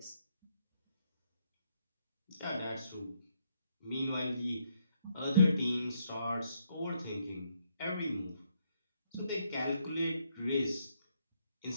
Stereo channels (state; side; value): inverted; both; correlation -0.75